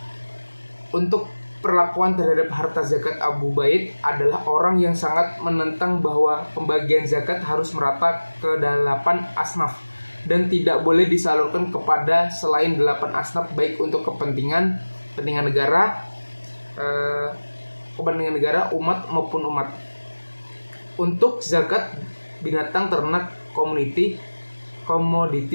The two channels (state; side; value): inverted; both; correlation -1.00